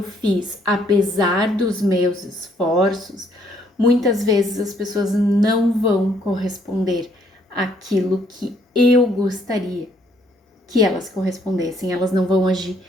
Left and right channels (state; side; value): normal; both; correlation 0.67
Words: fiz, apesar dos meus esforços, muitas vezes as pessoas não vão corresponder àquilo que eu gostaria que elas correspondessem, elas não vão agir